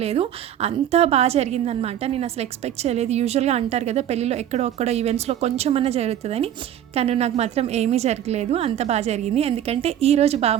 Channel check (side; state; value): left; quieter; 10.7 dB